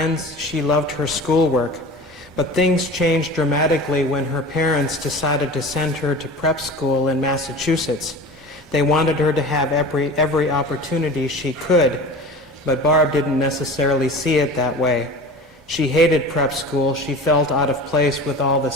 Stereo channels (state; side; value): normal; both; correlation 0.36